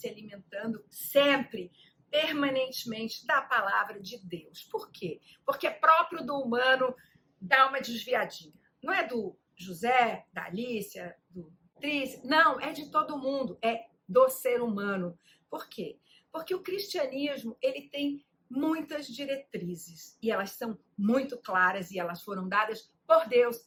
alimentando sempre, permanentemente, da palavra de Deus. Por quê? Porque é próprio do humano dar uma desviadinha. Não é do José, da Alicia, do Tris, não, é de todo mundo, é do ser humano. Por quê? Porque o cristianismo, ele tem muitas diretrizes e elas são muito claras e elas foram dadas por Deus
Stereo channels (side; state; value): both; identical; correlation 1.00